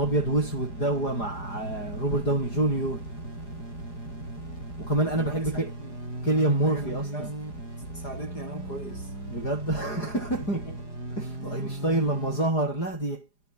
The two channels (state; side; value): late; right; 4.9 ms